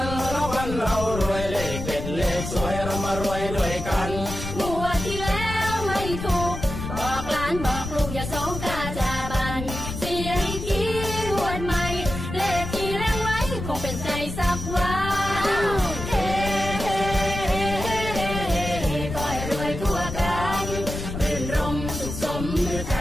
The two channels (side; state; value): left; noise; rumble, 7 dB below the sound